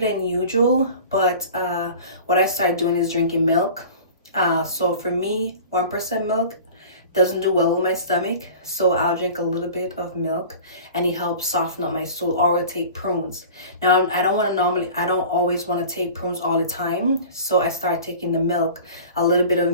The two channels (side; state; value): both; inverted; correlation -0.40